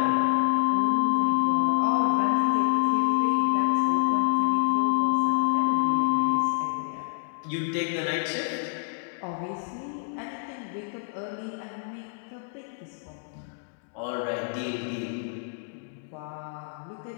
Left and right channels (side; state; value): right; silent; digital silence